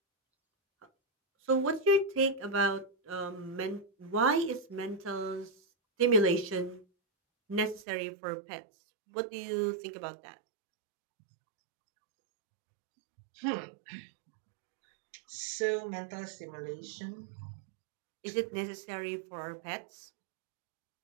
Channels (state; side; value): drops out; left; at 7.9 s